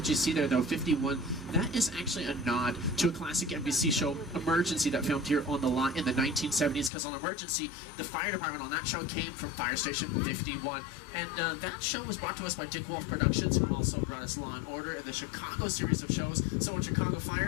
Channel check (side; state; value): right; drops out; at 6.9 s